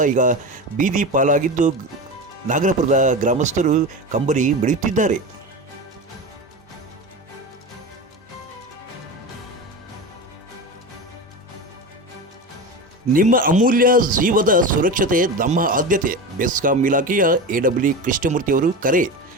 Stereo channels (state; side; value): normal; both; correlation 0.25